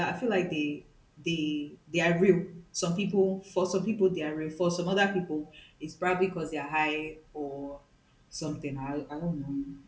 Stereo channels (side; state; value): both; identical; correlation 1.00